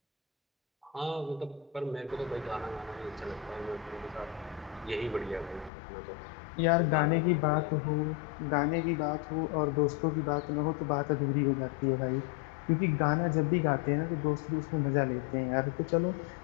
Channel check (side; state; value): right; drops out; at 5.7 s